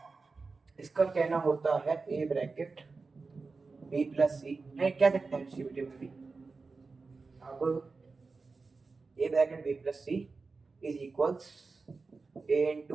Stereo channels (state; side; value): quieter; left; 4.2 dB